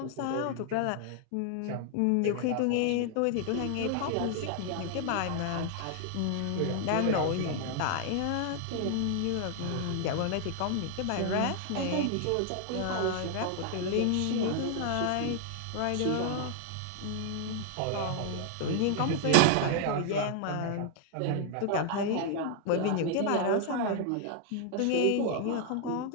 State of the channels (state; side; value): different; both; correlation 0.00